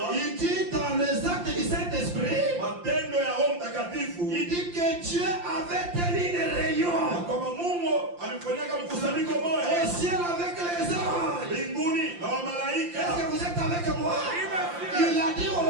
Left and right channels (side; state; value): left; late; 5.7 ms